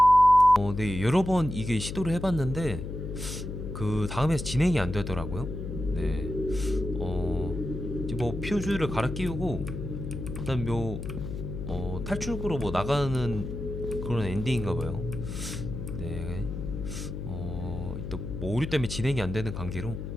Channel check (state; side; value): noise; left; hum, 6 dB below the sound